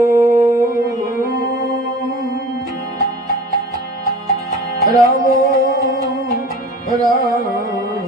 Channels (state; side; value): normal; both; correlation 0.41